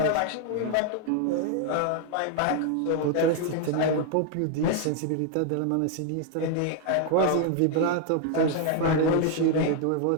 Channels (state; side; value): different; both; correlation 0.00